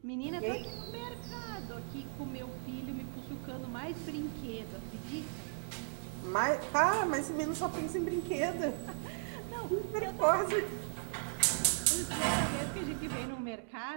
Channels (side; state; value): left; silent; 53 dB below the other